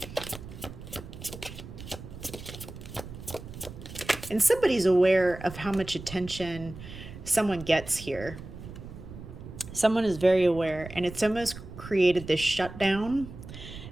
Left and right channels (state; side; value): noise; right; rumble, 13 dB below the sound